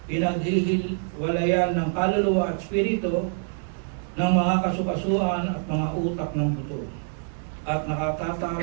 pinaghihiwalayan ng kaluluwa at espiritu, ng mga kasukasuan at mga utak ng buto. At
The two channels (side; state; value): left; silent; 61 dB below the other